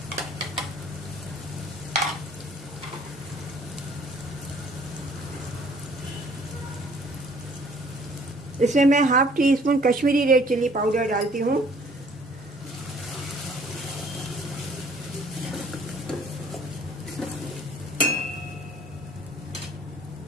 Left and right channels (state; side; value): normal; both; correlation 0.57